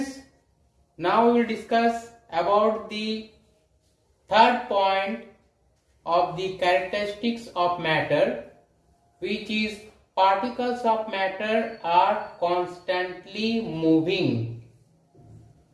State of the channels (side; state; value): both; identical; correlation 1.00